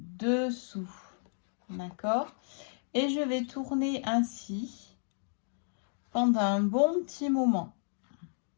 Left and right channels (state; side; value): silent; right; digital silence